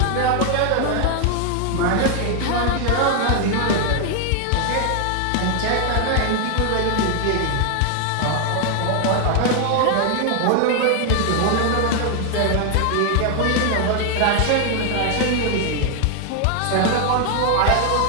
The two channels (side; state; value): both; different; correlation 0.00